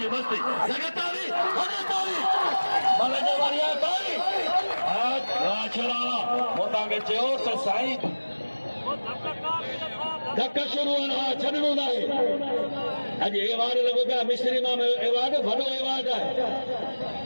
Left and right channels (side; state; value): both; inverted; correlation -1.00